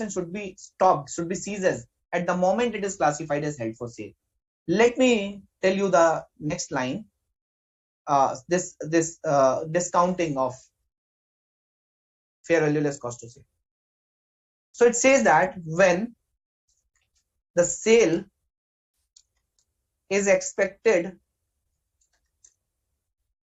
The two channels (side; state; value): both; identical; correlation 1.00